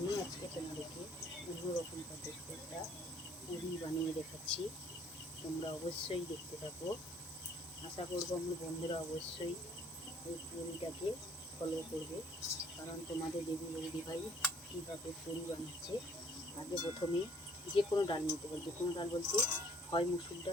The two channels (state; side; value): normal; both; correlation 0.58